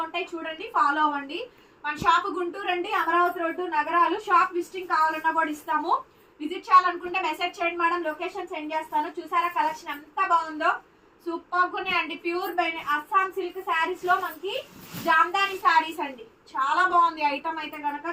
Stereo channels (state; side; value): identical; both; correlation 1.00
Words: ఉంటాయి, చూడండి, ఫాలో అవ్వండి. మన షాప్ గుంటూరు అండి, అమరావతి రోడ్డు, నగరాలు. షాప్ విజిటింగ్ కావాలన్నా కూడా ఇస్తాము. విజిట్ చేయాలనుకుంటే మెసేజ్ చేయండి మేడం, లొకేషన్ సెండ్ చేస్తాను. చూసారా కలెక్షన్ ఎంత బాగుందో. సూపర్ గా అండి. ప్యూర్ అస్సాం సిల్క్ శారీస్ లో మనకి జామ్దాని శారీస్ అండి. చాలా బాగుంది ఐటమ్ అయితే కనుక.